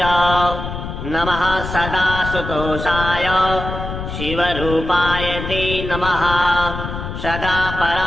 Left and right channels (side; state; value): left; noise; rumble, 7 dB below the sound